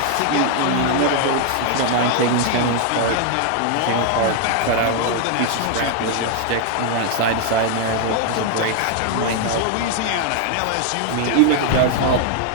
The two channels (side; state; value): both; different; correlation 0.00